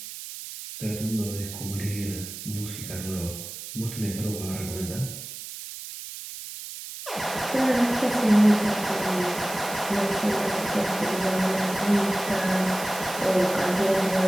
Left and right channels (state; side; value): noise; right; hiss, 10 dB below the sound